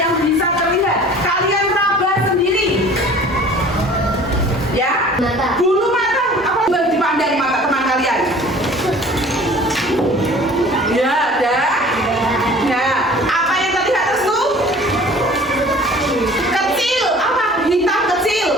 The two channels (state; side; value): normal; both; correlation 0.47